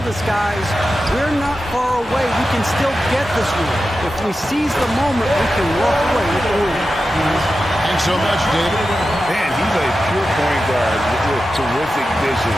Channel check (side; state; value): both; normal; correlation 0.92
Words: his guys, we're not far away. We can still get this one. If we seize the moment, we can walk away with the win. Thanks so much, David. Man, he's a pure point guard with terrific vision.